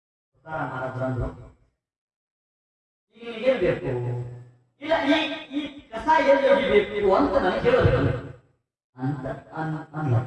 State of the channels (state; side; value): identical; both; correlation 1.00